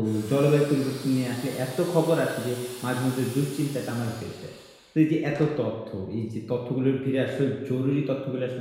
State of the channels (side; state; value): both; identical; correlation 1.00